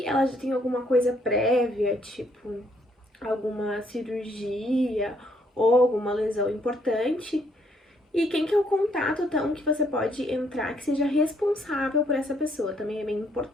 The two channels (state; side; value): normal; both; correlation 0.70